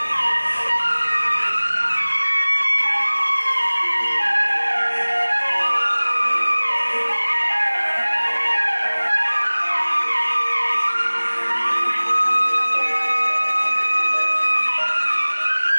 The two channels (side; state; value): both; inverted; correlation -1.00